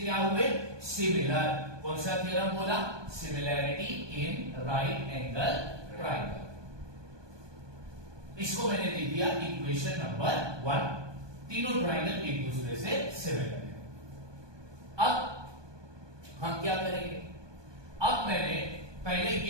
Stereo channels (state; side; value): late; left; 1.2 ms